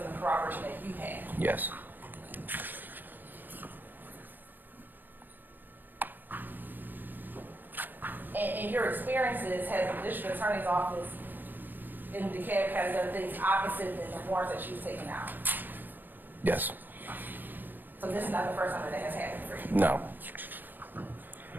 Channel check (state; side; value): late; left; 0.092 ms